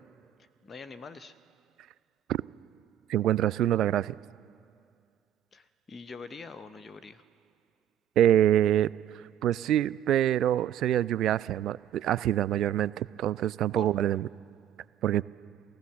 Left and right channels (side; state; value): left; quieter; 11.1 dB